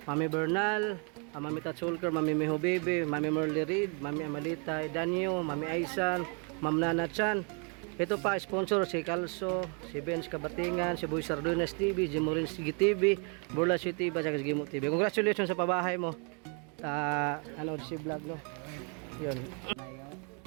Mami Bernal, Mami Tatsulker, Mami Miho Baby, Mami Merly Reed, Mami Amalita Danyo, Mami Aisan, Ma'am Nana Chan. Ito pa sponsor si Calso, si Benz Kabatingan, si Boy Sardunas TV, Jimurin Sige TV, Burla City TV, at Gimo TV. Congratulations sa pabahay mo. Ano si vlog, no. 'Yun.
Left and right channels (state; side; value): quieter; left; 36.8 dB